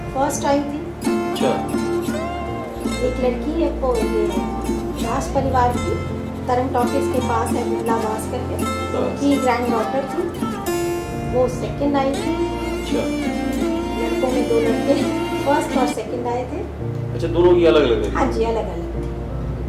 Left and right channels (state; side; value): identical; both; correlation 1.00